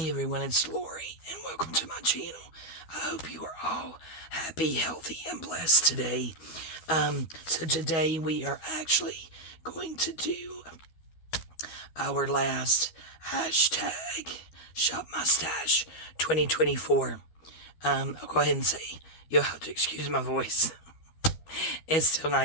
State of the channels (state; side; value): late; right; 13 ms